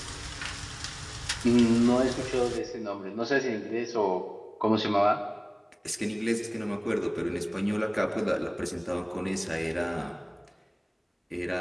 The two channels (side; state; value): both; identical; correlation 1.00